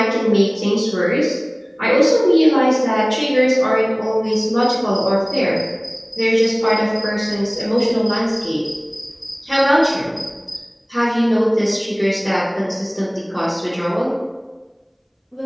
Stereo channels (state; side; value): identical; both; correlation 1.00